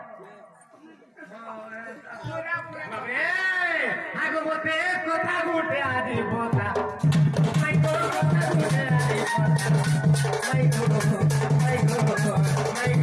বাবরে ভাগবতে কথা গুটে আজি বতা মাই গো কথা গুটে আজি বতা মাই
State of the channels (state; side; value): identical; both; correlation 1.00